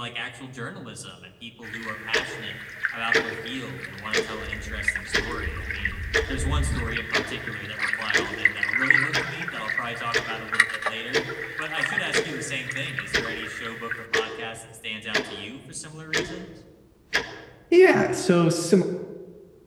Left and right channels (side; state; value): both; identical; correlation 1.00